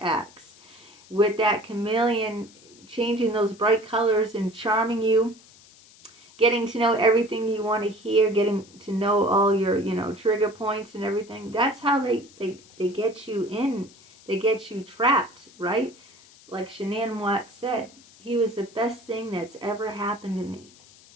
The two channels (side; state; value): left; noise; hiss, 25 dB below the sound